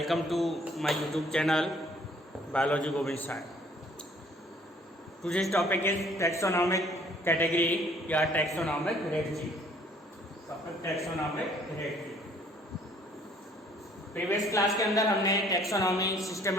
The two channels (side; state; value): both; normal; correlation 0.59